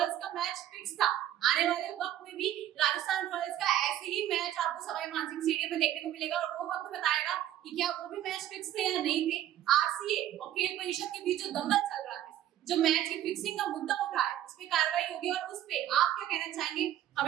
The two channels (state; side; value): quieter; left; 12.2 dB